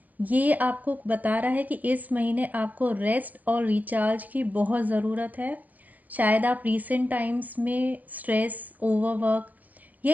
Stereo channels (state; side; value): late; left; 0.081 ms